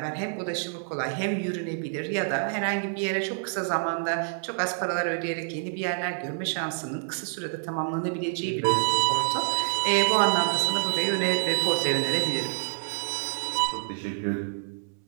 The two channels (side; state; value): left; silent; digital silence